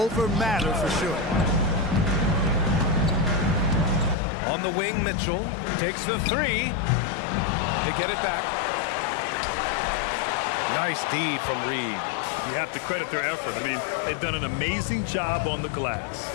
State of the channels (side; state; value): right; drops out; at 4.2 s